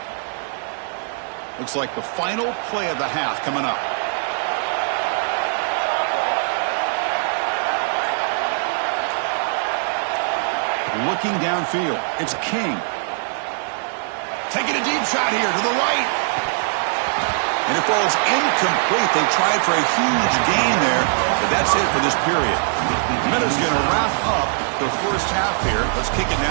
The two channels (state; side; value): silent; left; 65 dB below the other